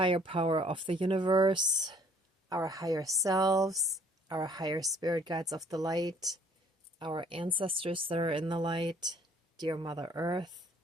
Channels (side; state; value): both; normal; correlation 0.59